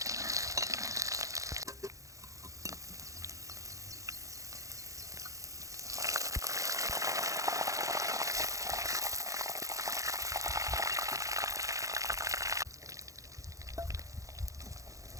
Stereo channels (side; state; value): left; late; 0.16 ms